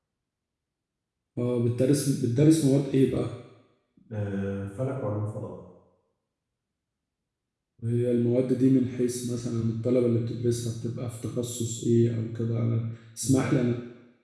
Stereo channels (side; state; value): both; identical; correlation 1.00